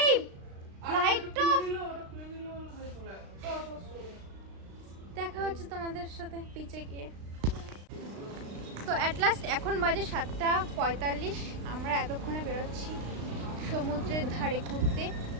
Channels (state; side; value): late; left; 36 ms